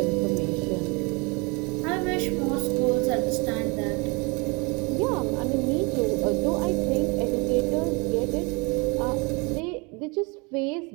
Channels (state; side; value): quieter; left; 29.1 dB